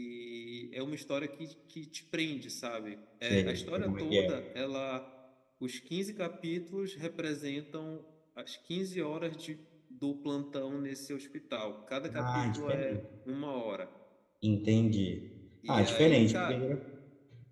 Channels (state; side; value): identical; both; correlation 1.00